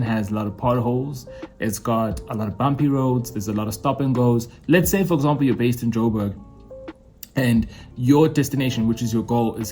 has a lot of potholes. It's got a lot of bumpy roads. There's a lot of stop and goes. Let's say, for example, you're based in Joburg and your destination, which is your goal, is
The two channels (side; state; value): both; identical; correlation 1.00